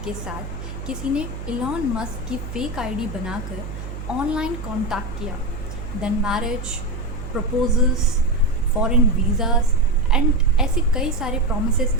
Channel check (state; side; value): noise; right; hum, 9 dB below the sound